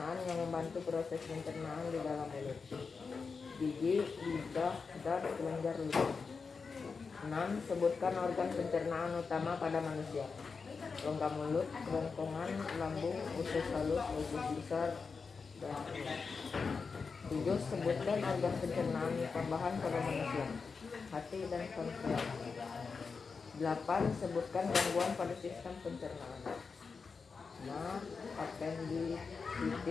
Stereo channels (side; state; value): right; quieter; 5.0 dB